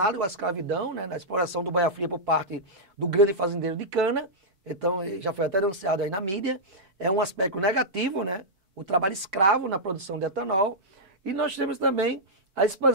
à escravidão, né? Na exploração do boia-fria por parte do grande fazendeiro de cana. Então, já foi até denunciado aí na mídia. É um aspecto negativo, né? O trabalho escravo na produção de etanol. E nós temos também a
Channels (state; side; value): late; left; 4.6 ms